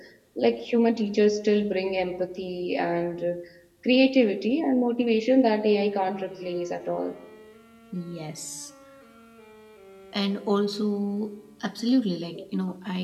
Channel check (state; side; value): identical; both; correlation 1.00